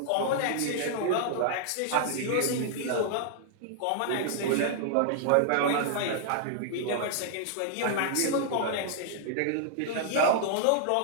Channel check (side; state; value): both; different; correlation -0.01